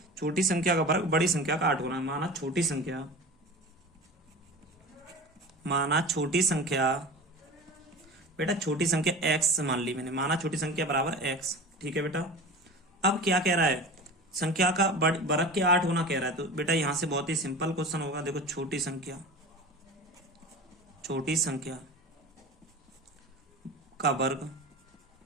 छोटी संख्या का वर्ग बड़ी संख्या का 8 गुना है। माना छोटी संख्या बेटा छोटी संख्या x मान ली मैंने। माना छोटी संख्या बराबर x। ठीक है बेटा। अब क्या कह रहा है, संख्या का वर्ग के 8 गुना कह रहा है। तो बेटा यहां से बहुत ही सिंपल क्वेश्चन होगा। देखो छोटी संख्या का वर्ग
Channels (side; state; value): both; normal; correlation 0.34